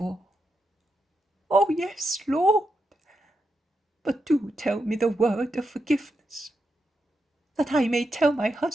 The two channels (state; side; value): normal; both; correlation 0.85